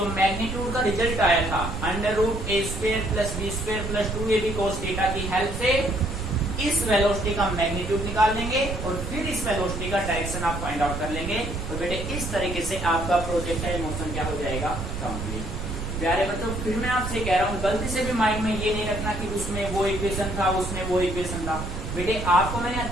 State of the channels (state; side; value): noise; right; rumble, 5 dB below the sound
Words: मैग्नीट्यूड का रिजल्ट आया था, √a² + b² + 2ab cos theta की हेल्प से इस वेलोसिटी का मैग्नीट्यूड निकाल लेंगे और फिर इस वेलोसिटी का डायरेक्शन आप फाइंड आउट कर लेंगे। तो बेटे इस तरीके से आपका प्रोजेक्टाइल मोशन क्या हो जाएगा? कंप्लीट। प्यारे बच्चों, फिर मैं आपसे कह रहा हूँ, गलती से भी माइंड में ये नहीं रखना कि उसमें वो इक्वेशन था, उसमें वो इक्वेशन था। बेटे आपको मैंने